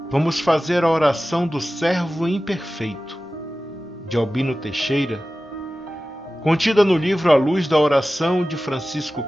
vamos fazer a oração do servo imperfeito, de Albino Teixeira, contida no livro A Luz da Oração de Francisco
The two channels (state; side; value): normal; both; correlation 0.95